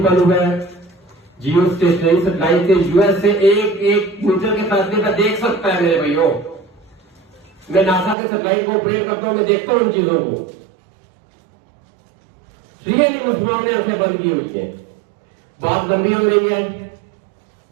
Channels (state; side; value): drops out; left; at 8.2 s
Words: हुआ है। जियो स्टेशनरी सैटेलाइट से यूएस से एक मीटर के फासले पर देख सकता है। मेरे भाइयों, मैं नासा के सैटेलाइट को ऑपरेट करता हूं, मैं देखता हूं उन चीजों को। रियली मुसलमानों ने आंखें बंद की हुई है। बात गंभीर हो रही है।